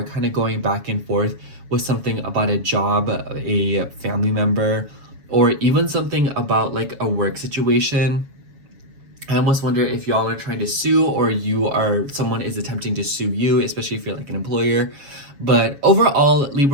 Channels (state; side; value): late; left; 7.2 ms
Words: kind of going back and forth with something about a job, a family member, or even something about like a work situation. I almost wonder if y'all are trying to sue, or someone is attempting to sue you, especially if you're like an employer. But overall,